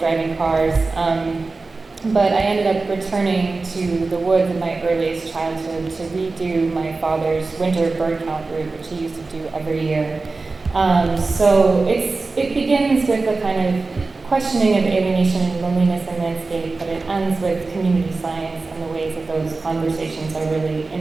cars. But I ended up returning to the woods in my earliest childhood to redo my father's winter bird count route, which he used to do every year. So it begins with a kind of questioning of alienation and loneliness in landscape, but it ends with community science and the ways that those conversations are really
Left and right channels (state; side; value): quieter; left; 3.7 dB